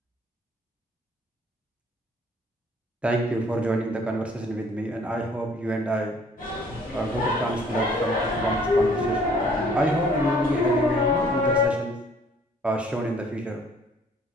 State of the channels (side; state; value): both; normal; correlation 0.58